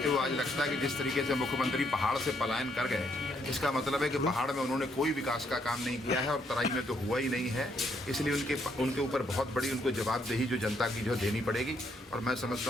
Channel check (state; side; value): normal; both; correlation 0.73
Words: हुए आज लगता है कि जिस तरीके से मुख्यमंत्री पहाड़ से पलायन कर गए, इसका मतलब है कि पहाड़ में उन्होंने कोई विकास का काम नहीं किया है और तराई में तो हुआ ही नहीं है। इसलिए उनके ऊपर बहुत बड़ी उनको जवाबदेही जो जनता की जो देनी पड़ेगी। और मैं